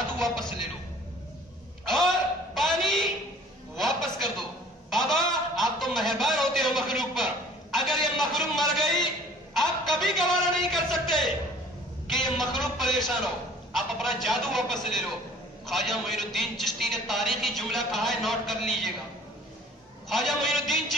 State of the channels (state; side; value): normal; both; correlation 0.51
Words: واپس لے لو اور پانی واپس کر دو، بابا آپ تو مہربان ہوتے ہو مخلوق پر، اگر یہ مخلوق مر گئی آپ کبھی گوارا نہیں کر سکتے کہ یہ مخلوق پریشان ہو، آپ اپنا جادو واپس لے لو۔ خواجہ معین الدین چشتی نے تاریخی جملہ کہا ہے، نوٹ کر لیجئے گا۔ خواجہ معین الدین